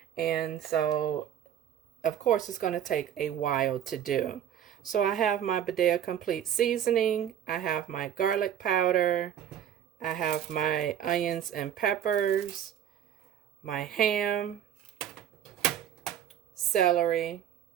And so, of course, it's going to take a while to do. So I have my BADIA complete seasoning. I have my garlic powder. I have my onions and peppers, my ham, celery,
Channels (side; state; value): left; quieter; 10.0 dB